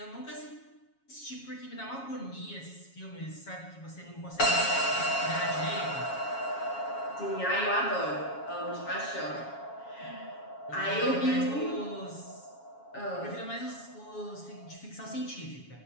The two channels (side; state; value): right; late; 7.2 ms